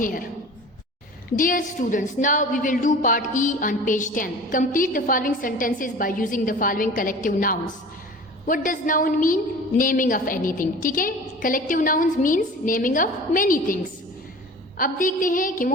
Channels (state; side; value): normal; both; correlation 0.40